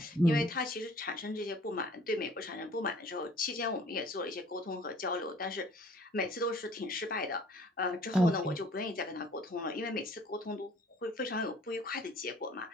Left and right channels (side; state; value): both; normal; correlation 0.53